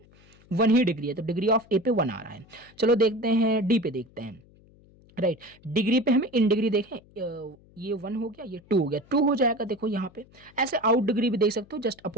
ही डिग्री है, तो डिग्री ऑफ ए पे 1 आ रहा है। चलो देखते हैं डी पे, देखते हैं, राइट। डिग्री पे हमें इन डिग्री देखें, ये 1 हो गया, ये 2 हो गया, 2 हो जाएगा। देखो यहाँ पे ऐसे आउट डिग्री भी देख सकते हो, just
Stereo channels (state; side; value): noise; left; hum, 27 dB below the sound